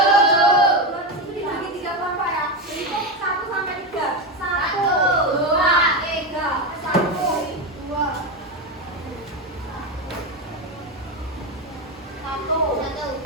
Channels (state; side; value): normal; both; correlation 0.14